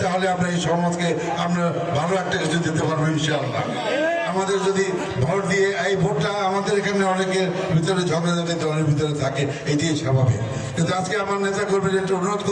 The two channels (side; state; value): both; identical; correlation 1.00